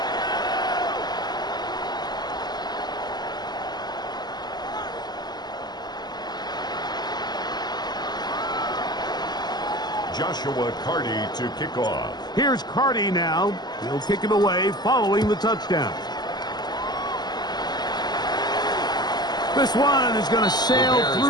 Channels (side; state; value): right; late; 0.20 ms